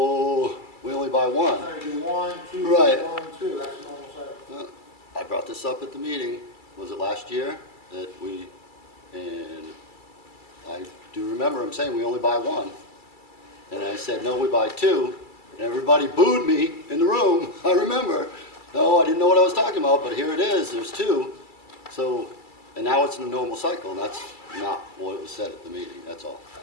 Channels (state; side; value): late; right; 2.3 ms